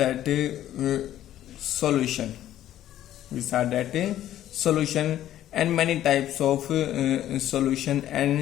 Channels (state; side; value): quieter; right; 12.4 dB